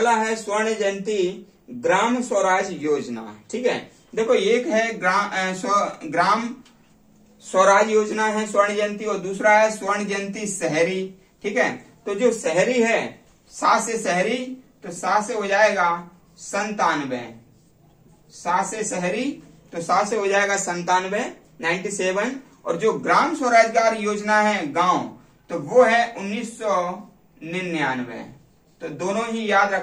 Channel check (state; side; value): identical; both; correlation 1.00